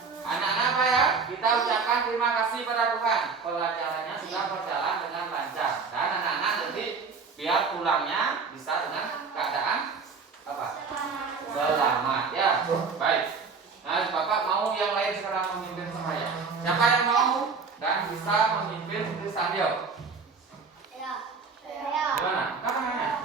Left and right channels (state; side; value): quieter; left; 5.0 dB